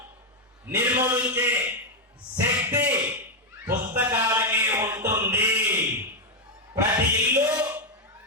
నిర్మూలించే శక్తి పుస్తకాలకి ఉంటుంది. ప్రతి ఇల్లు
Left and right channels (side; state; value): both; normal; correlation 0.02